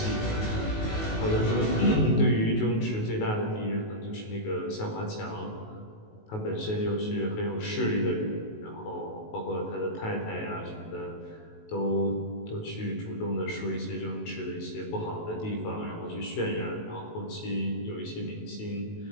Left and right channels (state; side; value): late; right; 19 ms